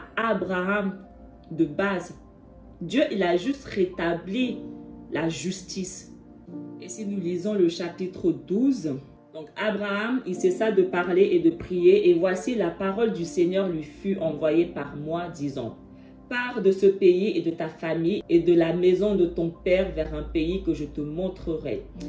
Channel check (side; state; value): both; identical; correlation 1.00